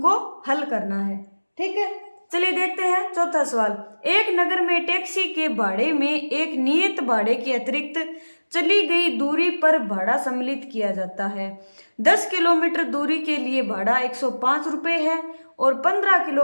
हल करना है। ठीक है, चलिए देखते हैं चौथा सवाल। एक नगर में टैक्सी के भाड़े में एक नियत भाड़े के अतिरिक्त चली गई दूरी पर भाड़ा सम्मिलित किया जाता है। 10 किलोमीटर दूरी के लिए भाड़ा 105 रुपये है और 15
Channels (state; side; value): inverted; both; correlation -1.00